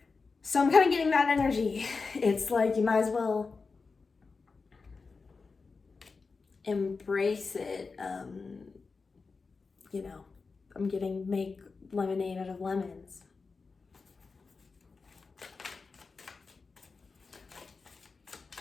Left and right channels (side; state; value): right; quieter; 4.5 dB